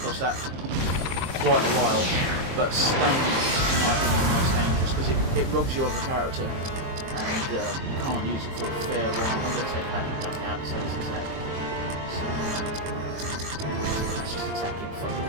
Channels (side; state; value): left; late; 23 ms